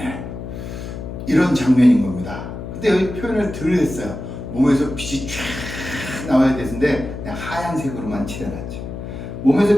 이런 장면인 겁니다. 근데 여기 표현을 덜 했어요. 몸에서 빛이 쫙 나와야 되는데 그냥 하얀색으로만 칠해놨죠.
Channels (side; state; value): left; noise; hum, 8 dB below the sound